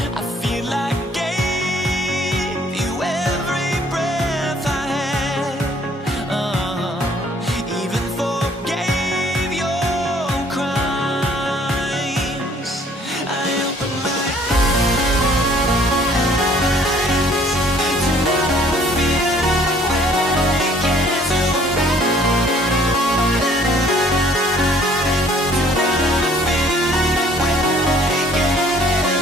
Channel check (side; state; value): both; normal; correlation 0.58